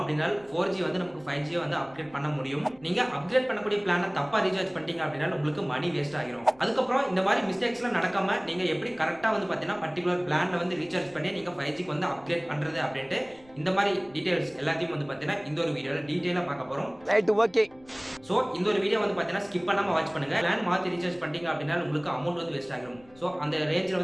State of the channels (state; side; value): noise; left; rumble, 27 dB below the sound